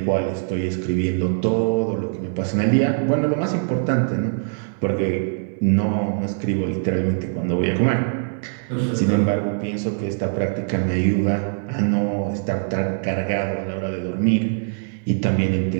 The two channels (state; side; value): silent; left; 64 dB below the other